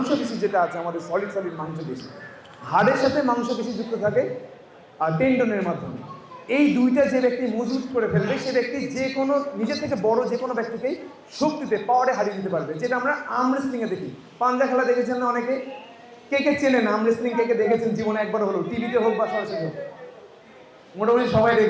যেটা আছে আমাদের সলিড মাংসপেশি, হাড়ের সাথে মাংসপেশি যুক্ত থাকে আর টেন্ডনের মাধ্যমে। এই দুইটা যে ব্যক্তি মজবুত করে ফেলবে সে ব্যক্তি যে কোনো নিজের থেকে বড় যে কোনো ব্যক্তিকেই শক্তিতে পাওয়ারে হারিয়ে দিতে পারবে, যেটা আমরা আর্ম রেসলিংয়ে দেখি। পাঞ্জা খেলা দেখেছেন না অনেকে? কে চেনেন আর্ম রেসলিং? কে দেখেছেন জীবনে একবার হলো, টিভিতে হোক বা সরাসরি হোক? মোটামুটি সবাই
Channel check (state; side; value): identical; both; correlation 1.00